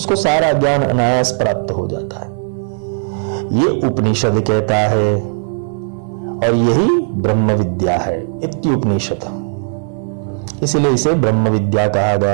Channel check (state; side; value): silent; left; digital silence